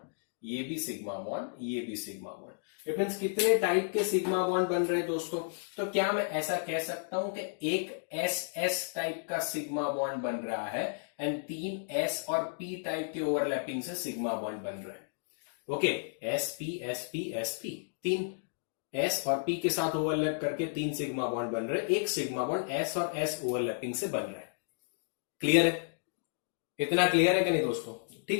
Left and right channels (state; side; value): silent; right; digital silence